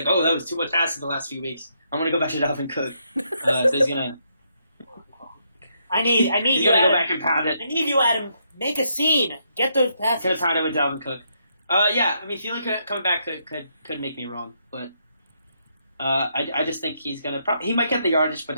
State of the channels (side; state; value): both; inverted; correlation -0.76